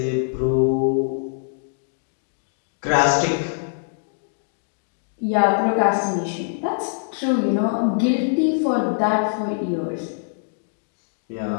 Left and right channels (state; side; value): silent; right; digital silence